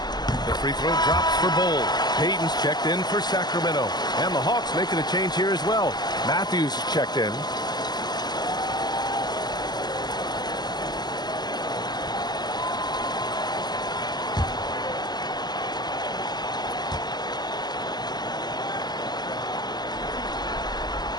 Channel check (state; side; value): late; right; 0.20 ms